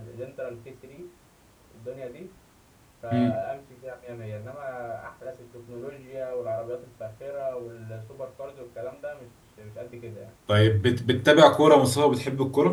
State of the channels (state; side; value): identical; both; correlation 1.00